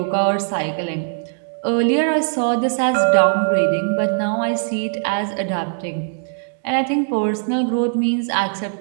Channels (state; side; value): silent; left; digital silence